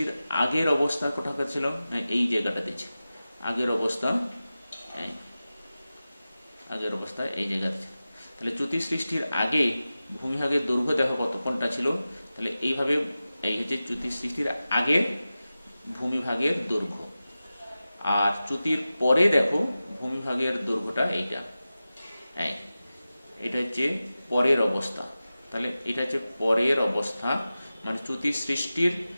আগের অবস্থা কোথাকার ছিল, এই জায়গাটাতে ছিল আগের অবস্থা, এই জায়গাতে ছিল। তাহলে চ্যুতি সৃষ্টির আগে ভূমিভাগের দৈর্ঘ্য দেখো কত, কোনটা ছিল, তাহলে এইভাবে এই হচ্ছে চ্যুতি সৃষ্টির আগের ভূমিভাগের দৈর্ঘ্য। আর চ্যুতির পরে দেখো ভূমিভাগের দৈর্ঘ্যটা এইটা, এটা হচ্ছে পরের অবস্থা। তাহলে এটা হচ্ছে পরের অবস্থা, মানে চ্যুতি সৃষ্টির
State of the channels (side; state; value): both; inverted; correlation -0.95